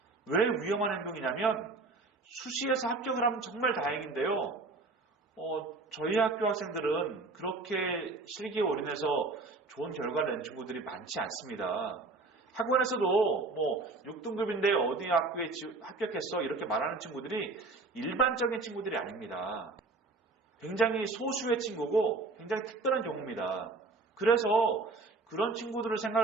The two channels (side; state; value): left; quieter; 3.6 dB